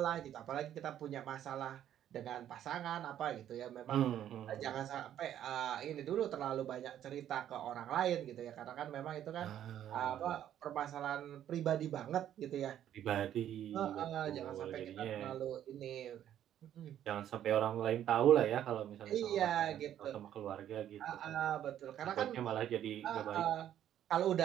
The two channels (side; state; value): left; quieter; 10.9 dB